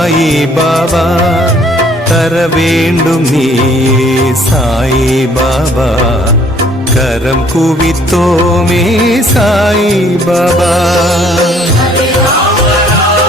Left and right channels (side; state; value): both; normal; correlation 0.60